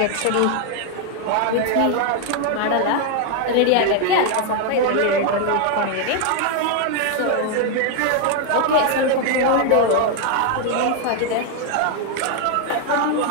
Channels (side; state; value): both; different; correlation 0.00